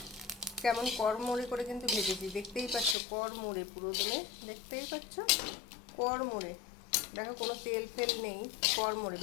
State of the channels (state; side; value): drops out; right; at 3.0 s